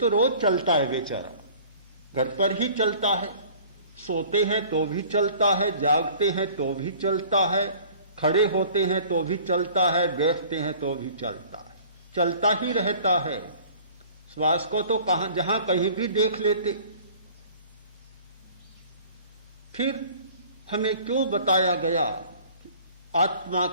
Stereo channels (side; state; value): both; inverted; correlation -0.49